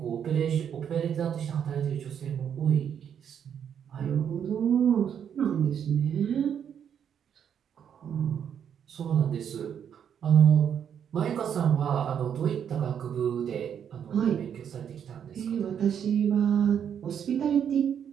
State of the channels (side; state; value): left; quieter; 8.4 dB